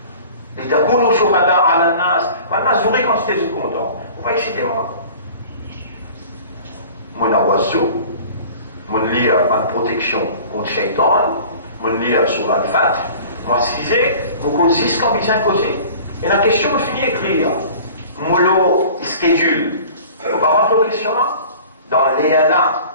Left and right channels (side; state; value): both; inverted; correlation -0.44